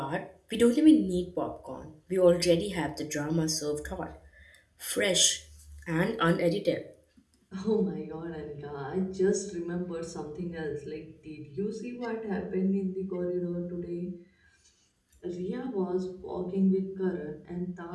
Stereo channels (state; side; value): identical; both; correlation 1.00